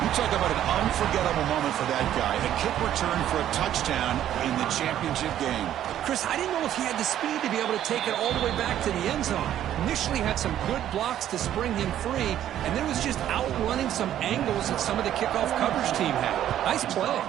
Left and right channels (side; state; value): left; quieter; 11.4 dB